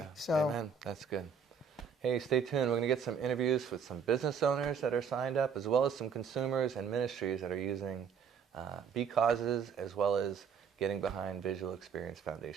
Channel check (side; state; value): left; quieter; 6.5 dB